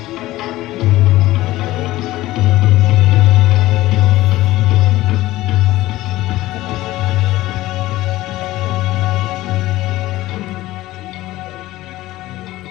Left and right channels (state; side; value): quieter; right; 16.9 dB